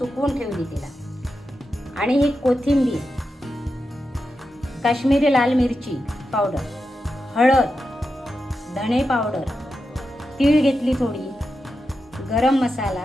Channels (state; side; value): normal; both; correlation 0.89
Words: ठेवली तिला. आणि ही कोथिंबीर, काश्मीरी लाल मिरची पावडर, हळद, धणे पावडर, तीळ घेतली थोडी, गरम